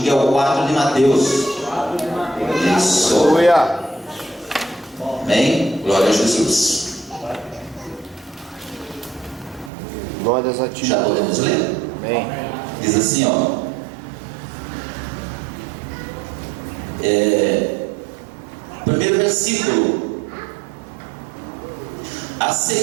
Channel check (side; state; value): left; drops out; at 9.7 s